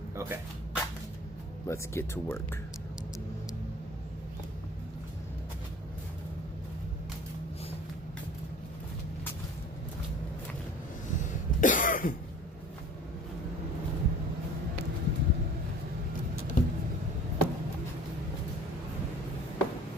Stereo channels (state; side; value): normal; both; correlation 0.44